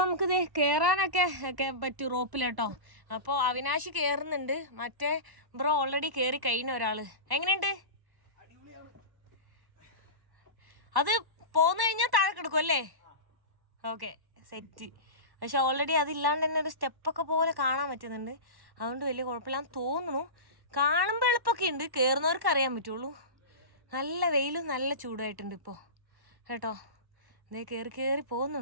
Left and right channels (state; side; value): late; left; 1.1 ms